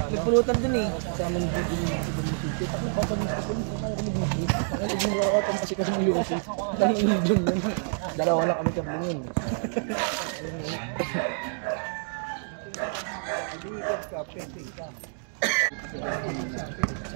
pulutan dun eh. Kasama nung dun yung sito. Tapos papagin sa pulutan, kaya kami mag-group. Kaya naging workout kasi kasi ng UFC. Dahil yung dun yun. Dalawa lang kami kabling yun.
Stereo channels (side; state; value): left; silent; digital silence